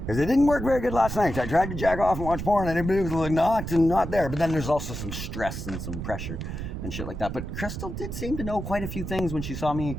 because it didn't work very good last night. I tried to jack off and watch porn and everybody was like knocked and not there. But then there's also some stress and some pressure and shit like that. But Crystal did seem to know quite a few things when she saw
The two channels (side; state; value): right; noise; rumble, 6 dB below the sound